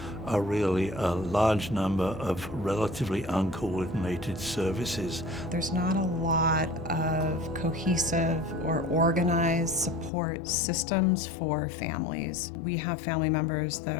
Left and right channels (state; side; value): drops out; right; at 10.1 s